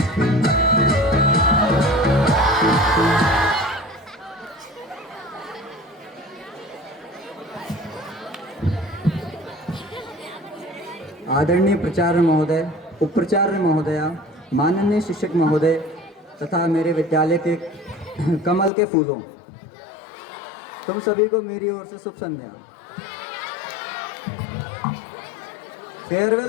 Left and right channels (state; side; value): drops out; right; at 18.7 s